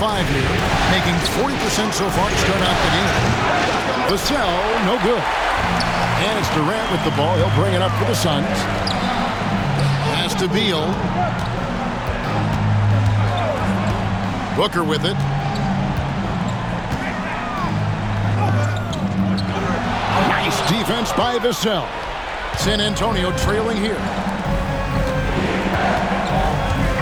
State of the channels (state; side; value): identical; both; correlation 1.00